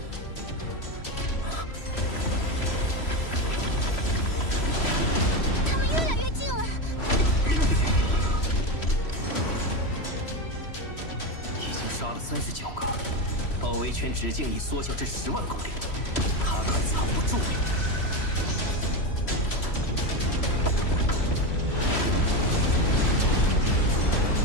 他们越来越近了，已经杀了39个，包围圈直径已缩小至10万公里，他快藏不住了。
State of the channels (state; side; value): late; right; 3.0 ms